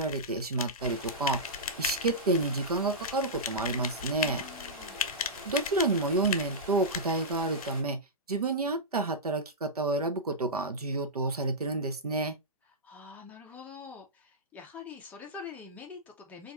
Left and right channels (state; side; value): normal; both; correlation -0.13